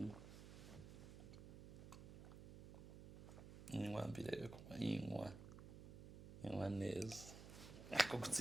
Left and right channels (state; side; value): noise; right; hum, 12 dB below the sound